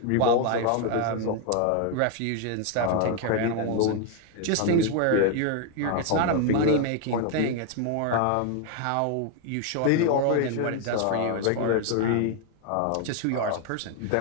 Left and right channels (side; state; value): both; different; correlation 0.01